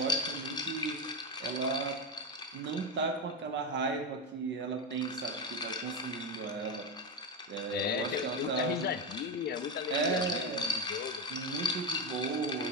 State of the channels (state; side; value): normal; both; correlation 0.13